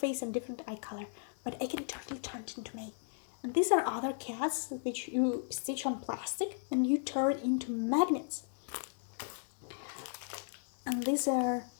and different eye color. But I can totally turn it into May. And these are other cats which you stitch on plastic and you turn into magnets. And these are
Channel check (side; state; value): right; silent; digital silence